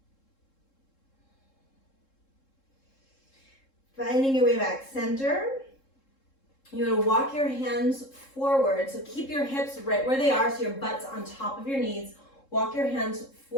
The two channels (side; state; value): right; late; 3.7 ms